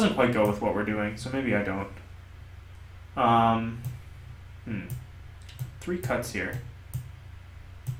quite go with what we're doing, so maybe I don't. 3 cuts here.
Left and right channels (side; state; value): both; identical; correlation 1.00